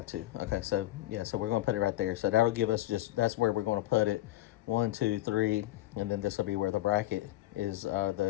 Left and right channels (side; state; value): right; quieter; 15.8 dB